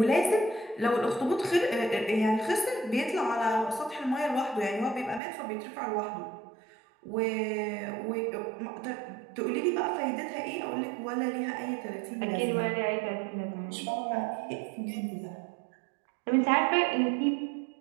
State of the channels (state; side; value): drops out; left; at 5.2 s